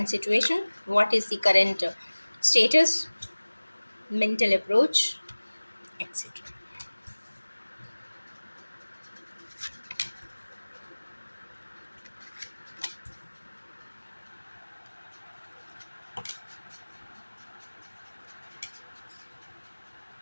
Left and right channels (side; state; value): both; inverted; correlation -1.00